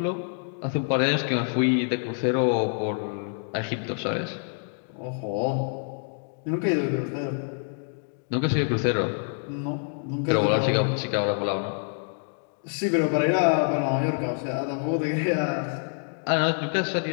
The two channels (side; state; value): right; silent; 60 dB below the other